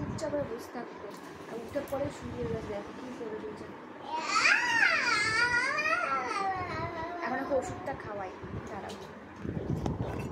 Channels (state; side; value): identical; both; correlation 1.00